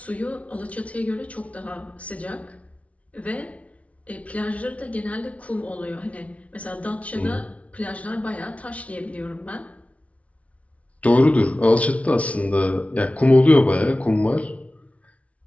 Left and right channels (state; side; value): late; right; 0.065 ms